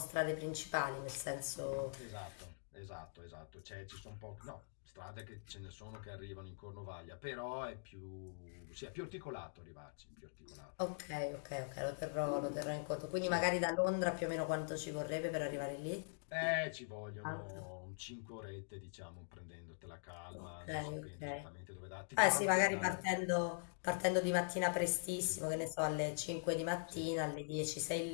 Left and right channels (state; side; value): silent; right; digital silence